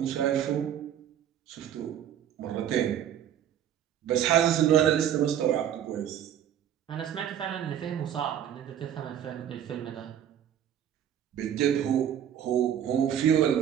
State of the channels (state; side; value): quieter; left; 10.0 dB